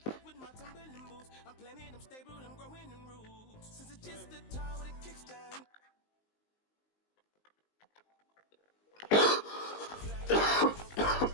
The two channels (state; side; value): late; right; 19 ms